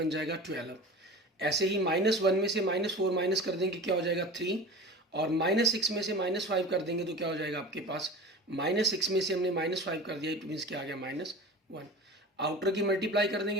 जाएगा 12। ऐसे ही -1 में से -4 माइनस कर देंगे क्या हो जाएगा 3, और -6 में से -5 कर देंगे तो क्या हो जाएगा आपके पास, -6 में से हमने -5 कर दिया, इट मीन्स क्या आ गया -1। आउटर की मल्टीप्लाई कर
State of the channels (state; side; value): normal; both; correlation 0.34